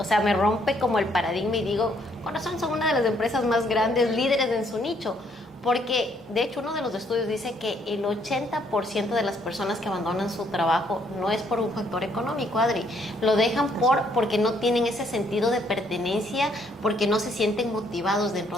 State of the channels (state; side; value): normal; both; correlation 0.68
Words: sea, me rompe como el paradigma y digo, con razón son una de las empresas más grandes, líderes en su nicho. Porque, de hecho, uno de los estudios dice que el 80% de las personas que abandonan su trabajo no es por un factor económico, Adri. Lo dejan porque no tienen ese sentido de pertenencia, porque no se sienten motivados